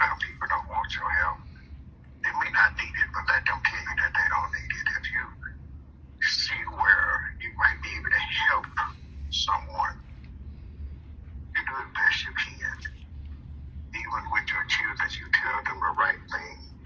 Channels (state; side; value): identical; both; correlation 1.00